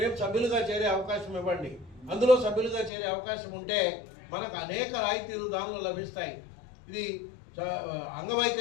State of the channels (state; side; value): drops out; right; at 2.9 s